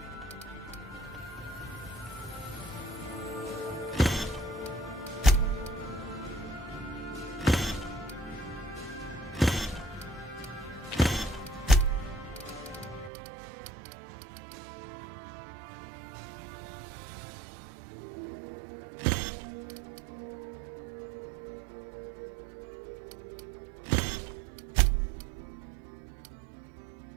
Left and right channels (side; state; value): left; drops out; at 13.1 s